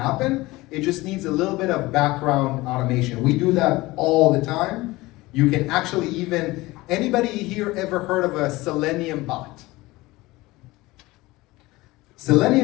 It just needs a little bit of background automation. We do that all the time. You can actually even, anybody here ever heard of a Selenium bot?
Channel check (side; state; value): right; quieter; 20.2 dB